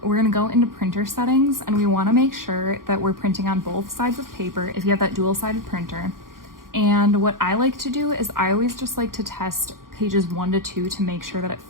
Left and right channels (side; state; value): left; late; 0.91 ms